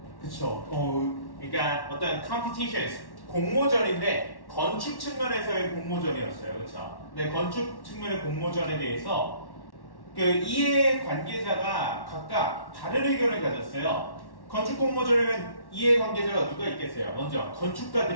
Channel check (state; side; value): late; right; 1.1 ms